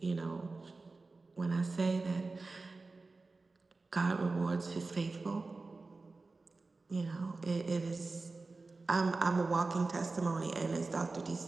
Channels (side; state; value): left; quieter; 3.7 dB